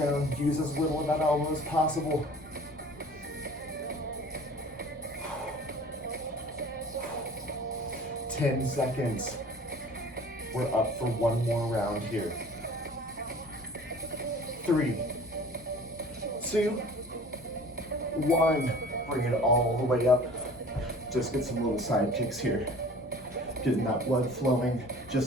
Use as little of that elbow as possible. 10 seconds. We're up for one more round here. 3, 2, 1. Bring it all the way up. Just get some little side kicks here. Getting that blood flowing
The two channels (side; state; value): both; normal; correlation 0.46